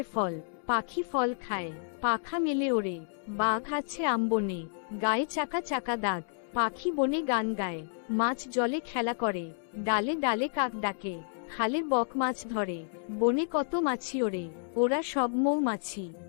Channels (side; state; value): right; silent; digital silence